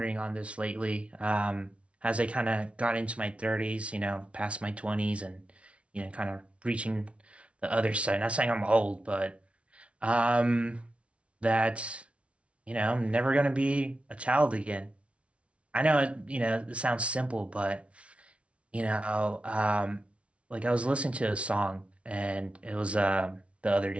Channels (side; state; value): left; late; 0.061 ms